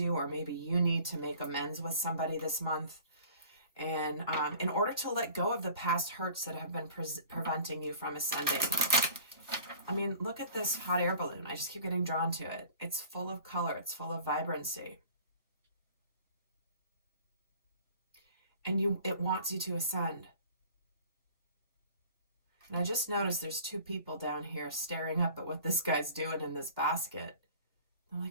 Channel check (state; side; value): inverted; both; correlation -0.46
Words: or maybe you need to make amends with somebody this month. And in order to let go of the past hurts that have been preventing you from ascending. I mean, look at this hot air balloon. I just keep getting drawn to it. It's full of color. It's full of vibrancy. And it wants you to ascend. And I just noticed there's two people down here staring up at what this guy's doing in this basket. I'm